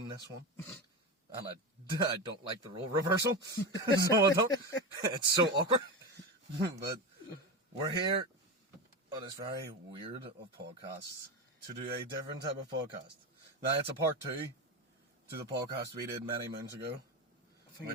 this one, and I don't like the role reversal, so I don't. It's so awkward, but we're here on this very weird of podcasts to do a different type of podcast. Now it's a part 2 to the podcast we did many moons ago. I think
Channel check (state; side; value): normal; both; correlation 0.20